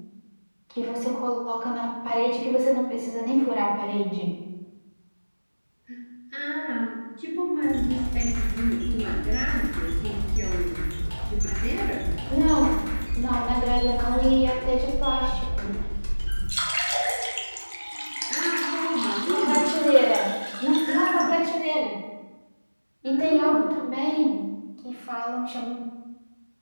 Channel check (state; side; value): inverted; both; correlation -1.00